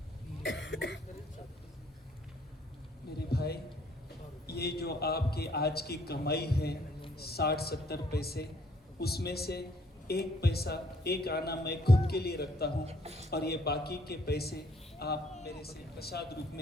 मेरे भाई, ये जो आपकी आज की कमाई है 60-70 पैसे, उसमें से 1 पैसा 1 आना मैं खुद के लिए रखता हूँ और ये बाकी के पैसे आप मेरे से प्रसाद रूप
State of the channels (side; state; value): both; normal; correlation 0.64